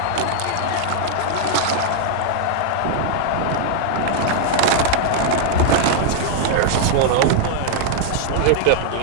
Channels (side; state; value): both; different; correlation 0.00